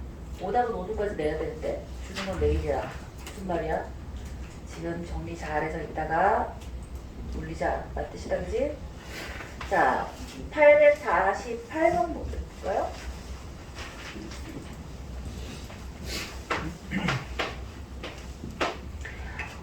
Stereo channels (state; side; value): identical; both; correlation 1.00